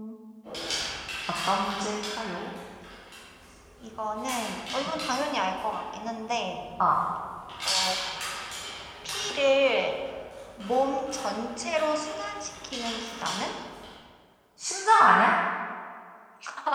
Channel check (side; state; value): both; identical; correlation 1.00